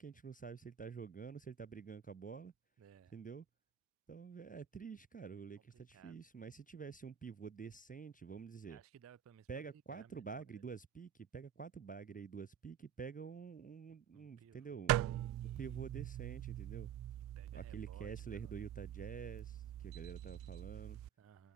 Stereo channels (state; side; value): quieter; left; 9.2 dB